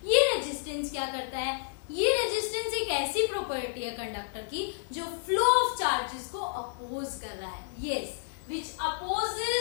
ये रेजिस्टेंस क्या करता है? ये रेजिस्टेंस एक ऐसी प्रॉपर्टी है कंडक्टर की जो फ्लो ऑफ चार्जेस को अपोज कर रहा है। Yes, which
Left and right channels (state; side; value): silent; right; 57 dB below the other